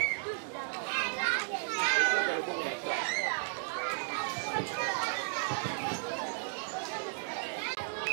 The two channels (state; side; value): silent; left; digital silence